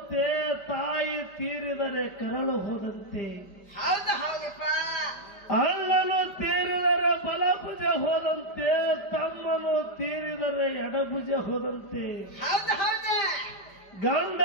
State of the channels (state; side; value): late; right; 5.1 ms